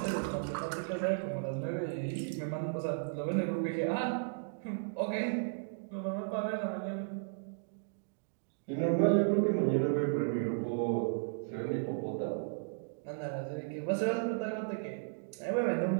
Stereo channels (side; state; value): left; silent; digital silence